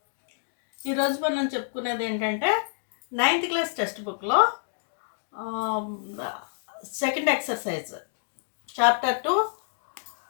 ఈరోజు మనం చెప్పుకునేది ఏంటంటే 9th క్లాస్ టెక్స్ట్ బుక్లో second exercise chapter 2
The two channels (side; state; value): right; silent; digital silence